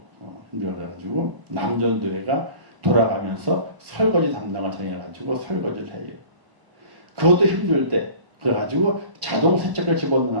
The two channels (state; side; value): late; left; 1.0 ms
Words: 그래가지고 남전도회가 돌아가면서 설거지 담당을 정해가지고 설거지를 해요. 그것도 힘들 때 그래가지고 자동 세척기를